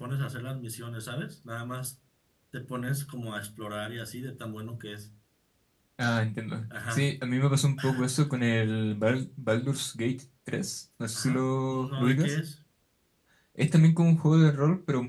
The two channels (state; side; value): identical; both; correlation 1.00